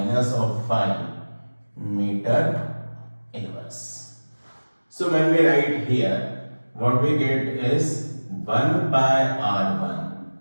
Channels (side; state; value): both; inverted; correlation -1.00